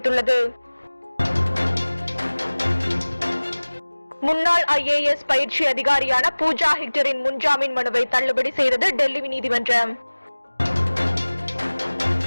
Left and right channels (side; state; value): both; inverted; correlation -1.00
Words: முன்னாள் IAS பயிற்சி அதிகாரியான பூஜா ஹெக்டரின் முன்ஜாமீன் மனுவை தள்ளுபடி செய்தது டெல்லி நீதிமன்றம்.